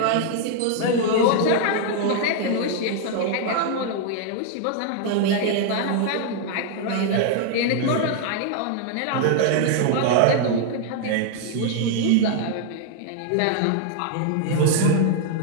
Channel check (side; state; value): both; different; correlation 0.00